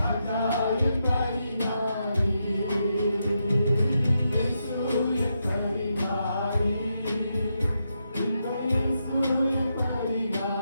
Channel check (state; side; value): inverted; both; correlation -0.84